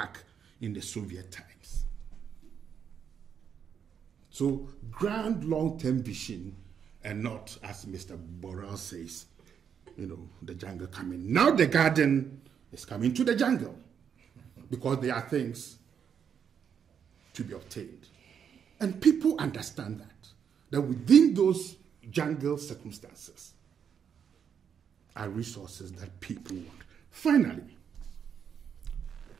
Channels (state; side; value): quieter; left; 7.7 dB